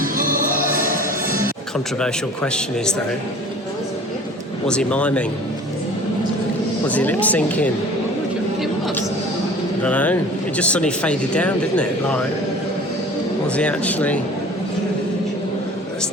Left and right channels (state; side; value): normal; both; correlation 0.44